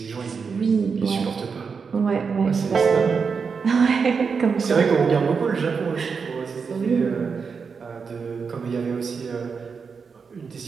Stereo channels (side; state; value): left; quieter; 5.5 dB